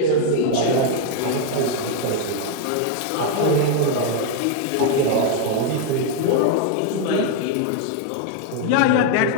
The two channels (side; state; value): both; different; correlation 0.00